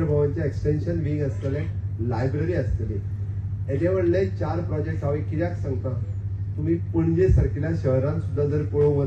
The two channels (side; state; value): both; identical; correlation 1.00